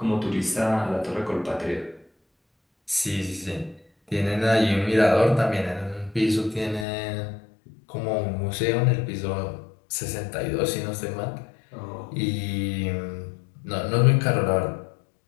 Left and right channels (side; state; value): right; drops out; at 6.9 s